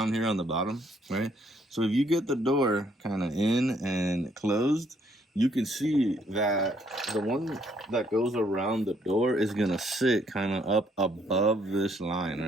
here on the bottom, right? So if you get the door kind of in and closed, you can see that the one that goes around the door is gonna sit kind of up above this line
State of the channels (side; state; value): both; normal; correlation 0.68